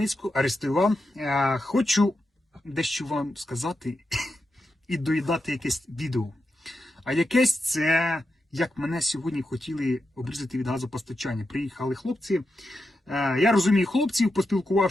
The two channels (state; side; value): normal; both; correlation 0.88